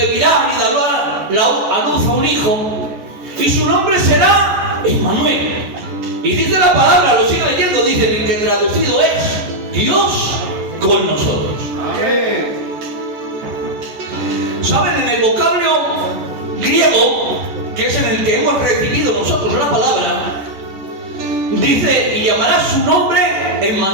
y dará a luz a un hijo, y su nombre será Emmanuel. Y dice la palabra, lo sigue leyendo, dice que traducido es Dios con nosotros. Amén. ¿Saben? En el vocablo griego, que es en el que hemos recibido nosotros la palabra, dice: y llamará su nombre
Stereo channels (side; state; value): left; late; 14 ms